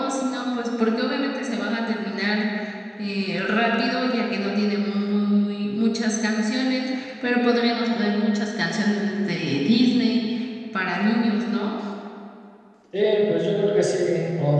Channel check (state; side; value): identical; both; correlation 1.00